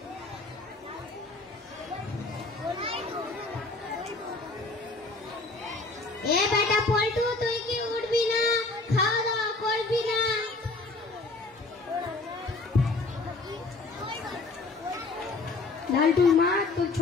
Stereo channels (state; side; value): quieter; right; 3.4 dB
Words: এ বেটা পল্টু, তুই কি উঠবি না? খাওয়া দাওয়া করবি না? লালটুর মা, তোর